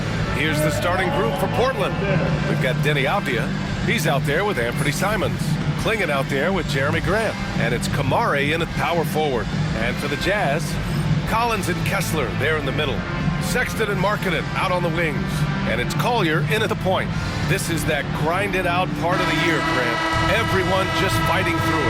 Here's the starting group for Portland. We've got Denny Avdia. He's out there with Anthony Simons. Klingon out there with Jeremy Grant. And it's Kamari in at power forward. And for the Jazz, Collins and Kessler there in the middle. Sexton and Markkanen out on the wings. And it's Collier in at the point. This is that grinded out part of the year, Grant. Everyone just fighting through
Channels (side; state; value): both; identical; correlation 1.00